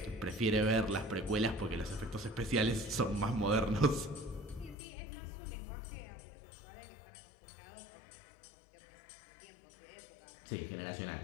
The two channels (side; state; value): right; drops out; at 4.8 s